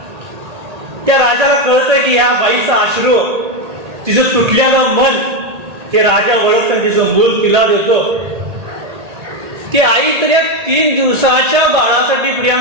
त्या राजाला कळतं की ह्या बाईचा अश्रू, तिचं तुटलेलं मन, ते राजा ओळखतं, तिचं मूल तिला देतो. ती आई तर या 3 दिवसाच्या बाळासाठी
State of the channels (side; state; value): left; late; 1.8 ms